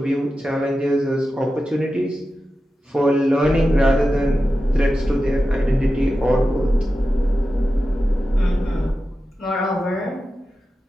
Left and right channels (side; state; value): both; normal; correlation 0.92